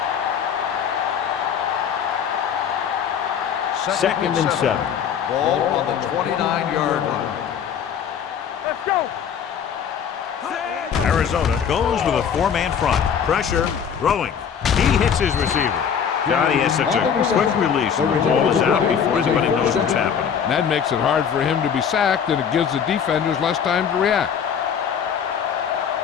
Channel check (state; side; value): quieter; right; 7.7 dB